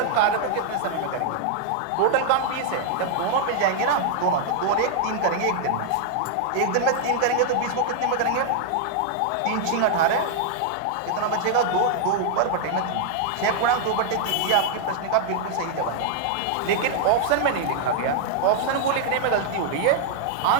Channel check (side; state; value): both; different; correlation -0.01